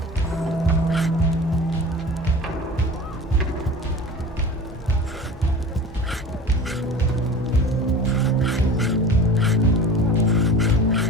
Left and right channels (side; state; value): both; normal; correlation 0.36